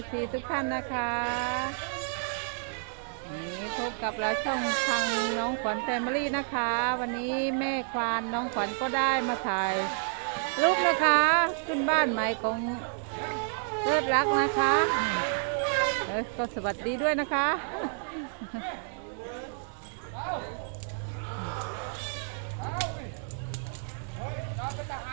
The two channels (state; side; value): silent; left; digital silence